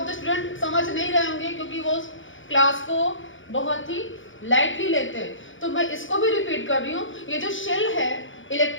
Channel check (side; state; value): right; late; 0.56 ms